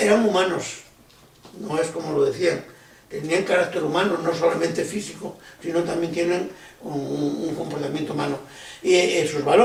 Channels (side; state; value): both; identical; correlation 1.00